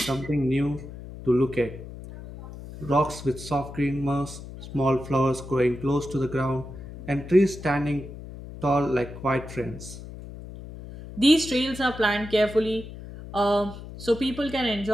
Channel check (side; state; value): left; noise; hum, 13 dB below the sound